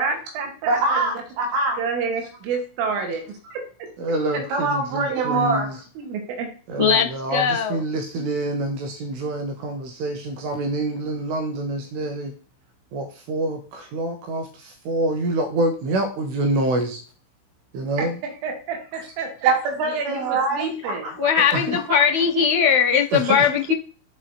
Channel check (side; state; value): left; late; 16 ms